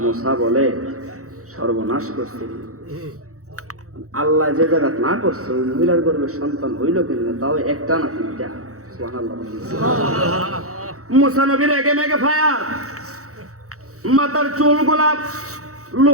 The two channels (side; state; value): left; late; 0.65 ms